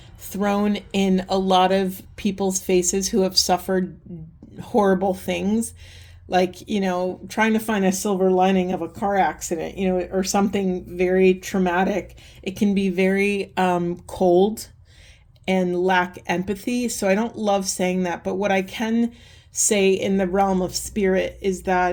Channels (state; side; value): identical; both; correlation 1.00